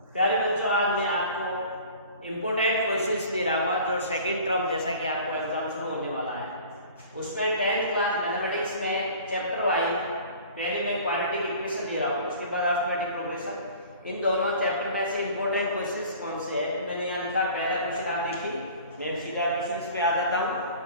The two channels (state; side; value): inverted; both; correlation -0.44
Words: प्यारे बच्चों, आज मैं आपको इम्पोर्टेंट क्वेश्चंस दे रहा हूँ जो सेकंड टर्म जैसा कि आपको एग्जाम शुरू होने वाला है उसमें 10th क्लास मैथमेटिक्स में चैप्टर वाइज पहले मैं क्वाड्रेटिक इक्वेशन दे रहा हूँ, उसके बाद अरिथमेटिक प्रोग्रेशन। इन दोनों चैप्टर में से इम्पोर्टेंट क्वेश्चंस कौन से हैं मैंने यहाँ लिखा। पहला क्वेश्चन आप देखिए, मैं सीधा क्वेश्चंस पे आ जाता हूँ।